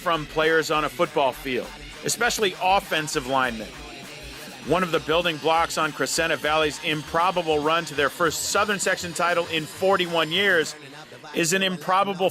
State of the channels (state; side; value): identical; both; correlation 1.00